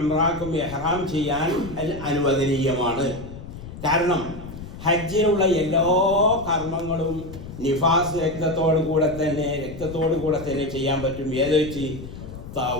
ഇഹ്റാം ചെയ്യാൻ അനുവദനീയമാണ്. കാരണം ഹജ്ജിനുള്ള എല്ലാ കർമ്മങ്ങളും നിഫാസ് രക്തത്തോടു കൂടെ തന്നെ ചെയ്യാൻ പറ്റും. ഏത് വെച്ച്?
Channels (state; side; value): noise; left; rumble, 12 dB below the sound